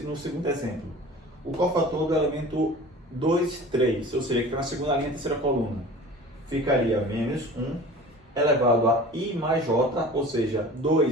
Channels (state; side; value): normal; both; correlation 0.40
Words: exemplo. O cofator do elemento 2, 3, ou seja, que está na segunda linha, terceira coluna, ficaria menos 1 elevado a I mais J, ou seja,